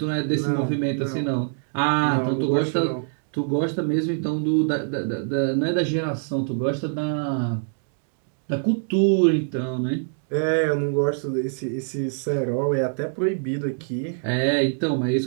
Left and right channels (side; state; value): left; silent; digital silence